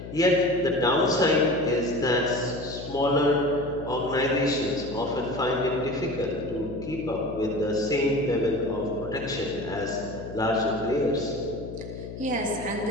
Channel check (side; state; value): left; noise; hum, 11 dB below the sound